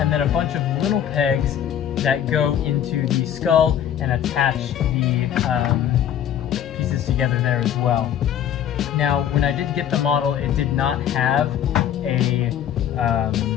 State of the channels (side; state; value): right; quieter; 9.9 dB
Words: then a bunch of little pegs that go into the skull and attach the pieces together there as well. Now, when I did get the model, it did not have a